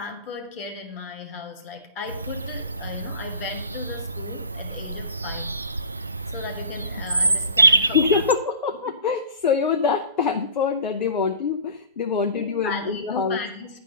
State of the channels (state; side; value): inverted; both; correlation -0.40